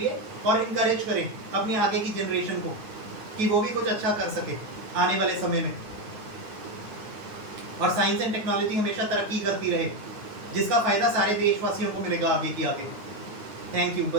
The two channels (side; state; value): left; late; 9.2 ms